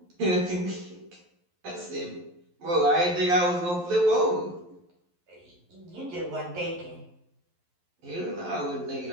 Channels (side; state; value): left; late; 11 ms